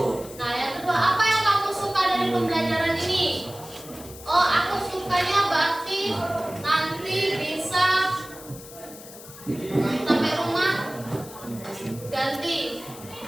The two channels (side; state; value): left; noise; hiss, 17 dB below the sound